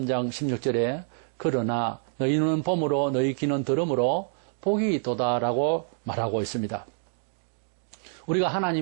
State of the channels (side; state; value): left; silent; digital silence